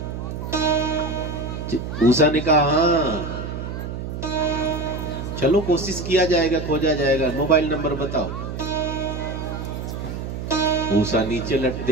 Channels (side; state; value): right; noise; hum, 6 dB below the sound